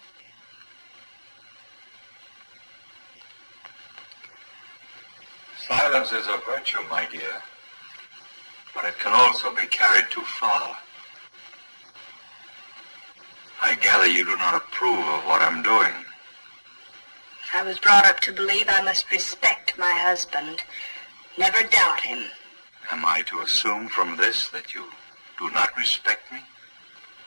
Silence is a virtue, my dear, but it can also be carried too far. I gather you do not approve of what I'm doing. I was brought up to believe I must respect my husband. Never doubt him. Am I to assume from this that you do not respect me?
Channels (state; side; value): inverted; both; correlation -1.00